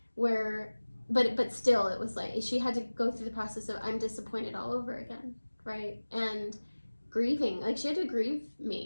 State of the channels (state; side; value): inverted; both; correlation -1.00